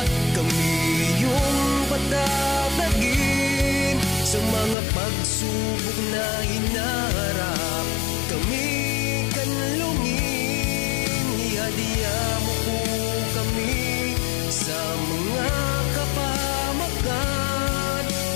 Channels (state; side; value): drops out; right; at 4.8 s